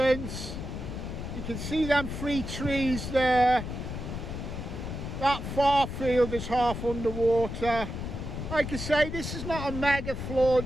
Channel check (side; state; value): left; noise; rumble, 6 dB below the sound